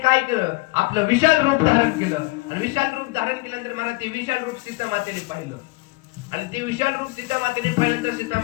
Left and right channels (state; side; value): quieter; right; 24.7 dB